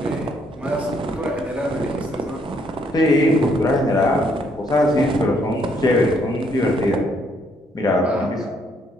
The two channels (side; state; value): both; normal; correlation 0.70